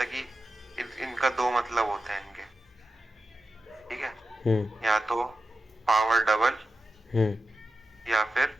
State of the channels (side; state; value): both; normal; correlation 0.92